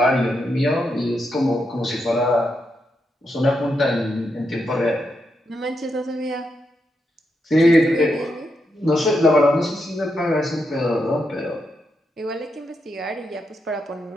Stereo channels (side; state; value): both; normal; correlation 0.83